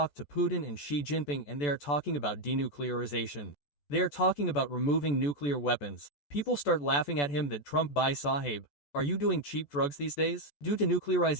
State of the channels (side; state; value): right; late; 14 ms